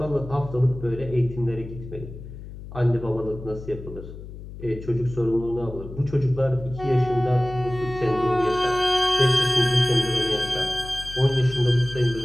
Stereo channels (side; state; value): left; noise; hum, 13 dB below the sound